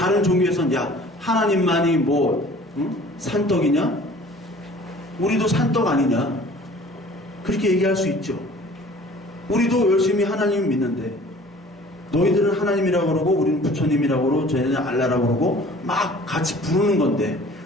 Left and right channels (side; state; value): both; normal; correlation 0.49